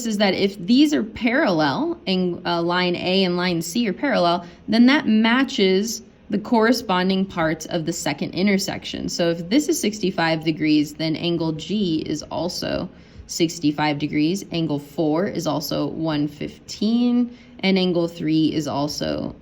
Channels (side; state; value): both; identical; correlation 1.00